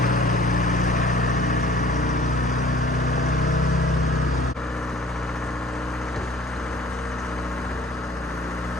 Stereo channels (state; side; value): normal; both; correlation 0.52